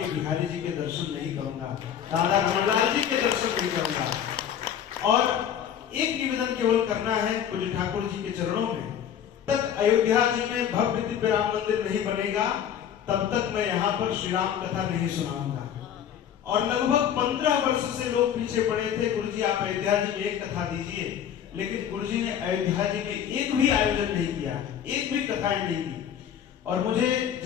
बिहारी जी के दर्शन नहीं करूंगा, राधा रमणलाल जी के दर्शन नहीं करूंगा। और एक निवेदन केवल करना है पूज्य ठाकुर जी के चरणों में, तक अयोध्या जी में भव्य दिव्य राम मंदिर नहीं बनेगा तब तक मैं यहाँ पर श्री राम कथा नहीं सुनाऊंगा। और लगभग 15 वर्ष से लोग पीछे पड़े थे, गुरु जी आप अयोध्या जी में एक कथा दीजिए, लेकिन गुरु जी ने अयोध्या जी में एक भी आयोजन नहीं किया, एक भी कथाएं नहीं की। और मुझे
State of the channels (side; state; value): right; quieter; 9.3 dB